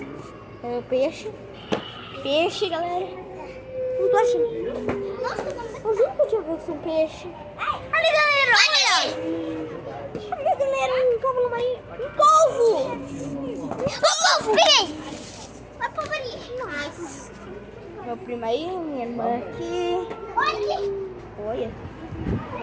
É o peixe. Peixe, galera. Não tô achando. Nossa, Eu juro que eu tinha visto um peixe. Ali, galera, olha. Olha, galera, um cavalo marinho. Um polvo. o povo, peguei. Olha o povo ali. Nossa. Meu primo aí, minha irmã aqui. Olha aqui. Olha.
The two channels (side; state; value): both; identical; correlation 1.00